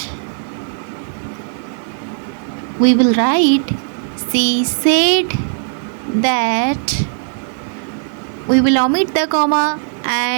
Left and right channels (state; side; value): silent; left; digital silence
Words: we will write she said that. We will omit the comma